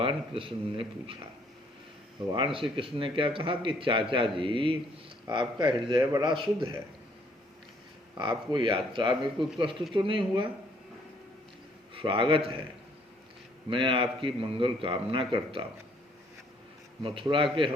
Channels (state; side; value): normal; both; correlation 0.65